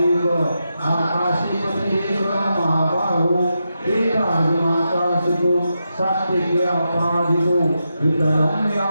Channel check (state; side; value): inverted; both; correlation -0.87